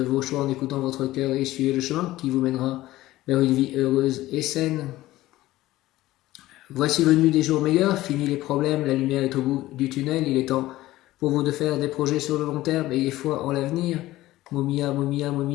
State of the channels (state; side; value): quieter; right; 16.5 dB